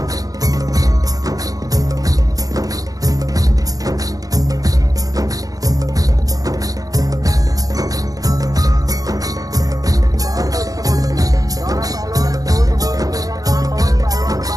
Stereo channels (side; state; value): left; late; 0.17 ms